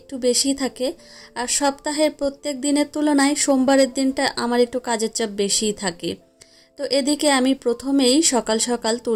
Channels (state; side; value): identical; both; correlation 1.00